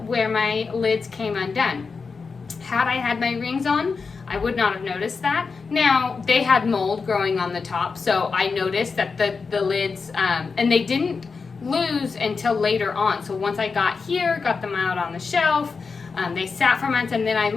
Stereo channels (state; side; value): quieter; right; 4.9 dB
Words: where my lids came undone. Had I had my rings on, I would not have noticed that. Now, they had mold growing on the top, so I noticed that the lids, and they didn't lose until later on. So once I got here, got them out on the shelf, they sat for months, and then I